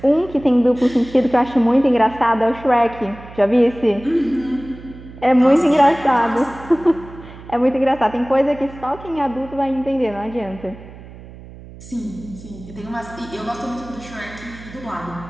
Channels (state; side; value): noise; right; hum, 17 dB below the sound